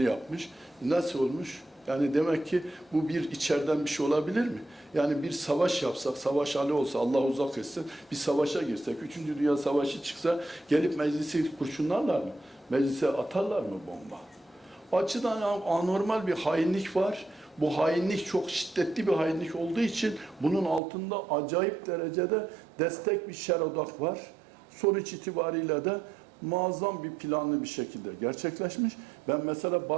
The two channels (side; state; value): left; drops out; at 20.8 s